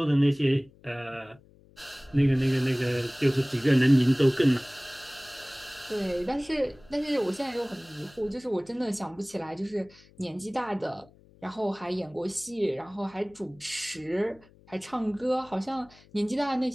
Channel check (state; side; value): noise; left; hum, 27 dB below the sound